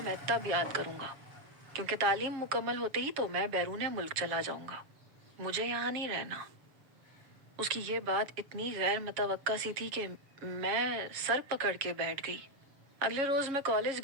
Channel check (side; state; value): left; late; 7.3 ms